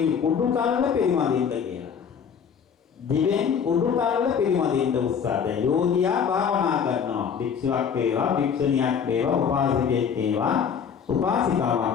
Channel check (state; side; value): quieter; right; 7.1 dB